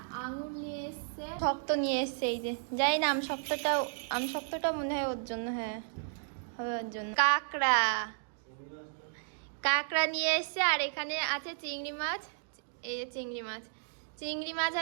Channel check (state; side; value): silent; left; digital silence